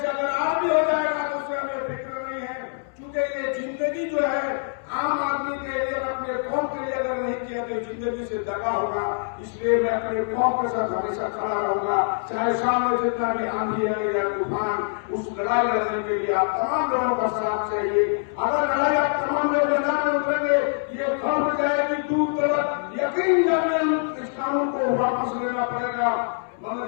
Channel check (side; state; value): right; silent; 62 dB below the other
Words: अगर आज भी हो जाएगा तो उससे हमें फिक्र नहीं है, क्योंकि ये जिंदगी जो है आम आदमी के लिए, अपने कौम के लिए अगर नहीं किया तो जिंदगी से दगा होगा। इसलिए मैं अपने कौम के साथ हमेशा खड़ा रहूंगा, चाहे सामने जितना भी आंधी है या तूफान। उस लड़ाई लड़ने के लिए आप तमाम लोगों का साथ चाहिए। अगर लड़ाई आप तमाम लोग मैदान में उतरेंगे, ये खबर जाएगी दूर तक, यकीन जाने इस कानून को वापस लेना पड़ेगा।